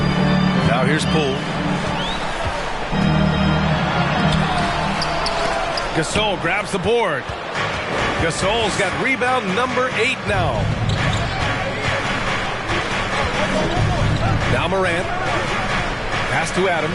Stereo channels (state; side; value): identical; both; correlation 1.00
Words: Now here's Poole. Gasol grabs the board. Gasol's got rebound number 8 now. Now Morant. Pass to